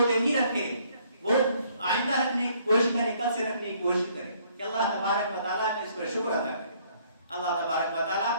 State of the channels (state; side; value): inverted; both; correlation -0.64